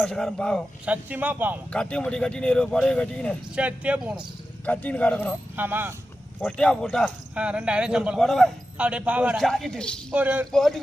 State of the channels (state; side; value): normal; both; correlation 0.92